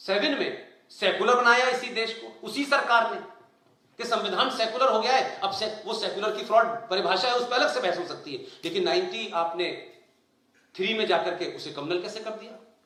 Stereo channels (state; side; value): identical; both; correlation 1.00